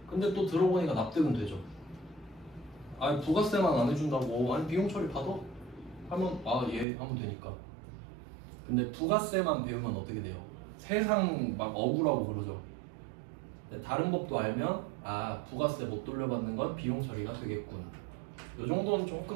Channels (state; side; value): drops out; left; at 6.9 s